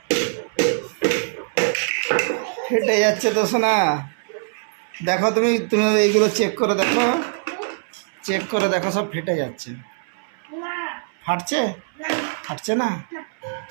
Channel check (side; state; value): left; silent; 64 dB below the other